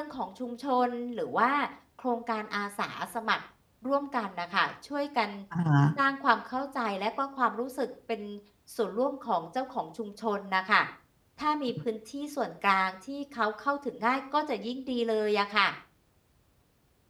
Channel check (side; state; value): both; identical; correlation 1.00